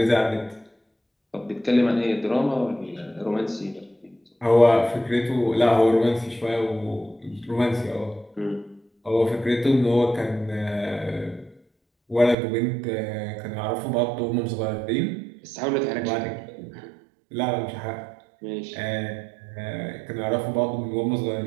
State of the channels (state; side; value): drops out; left; at 12.4 s